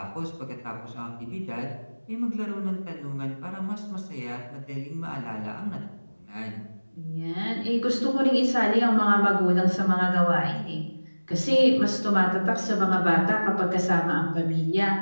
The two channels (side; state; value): both; inverted; correlation -1.00